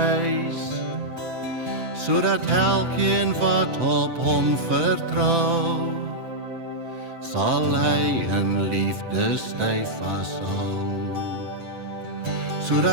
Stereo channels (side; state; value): left; late; 7.9 ms